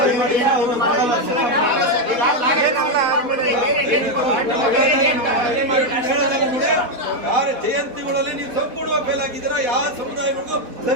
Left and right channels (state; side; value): late; left; 4.1 ms